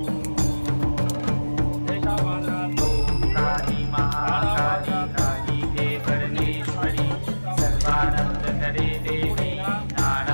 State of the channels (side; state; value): both; inverted; correlation -1.00